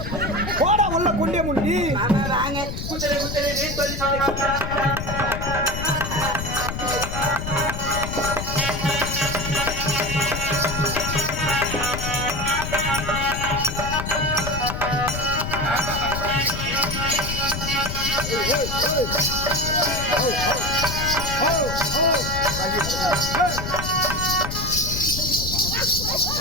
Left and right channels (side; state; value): left; noise; rumble, 5 dB below the sound